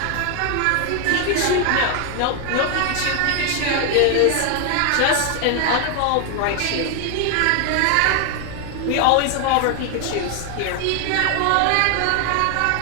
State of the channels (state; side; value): different; both; correlation 0.00